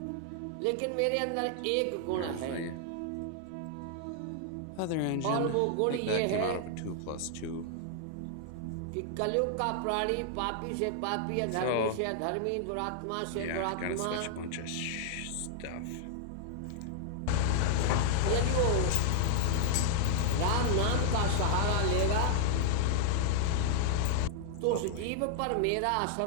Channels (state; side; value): different; both; correlation 0.00